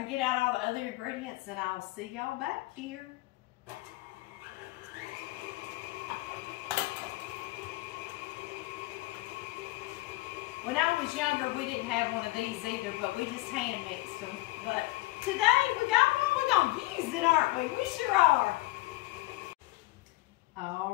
get out all the other ingredients, and I'll see y'all back here. When I was younger, we didn't have one of these either, but we just hand mixed them. But today we got one, we're gonna use it, aren't we? We sure are.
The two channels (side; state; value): right; quieter; 19.8 dB